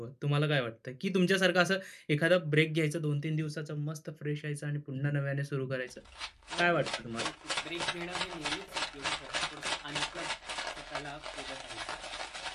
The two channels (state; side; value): identical; both; correlation 1.00